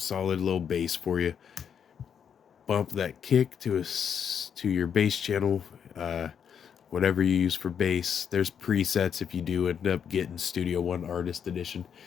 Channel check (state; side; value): quieter; right; 7.8 dB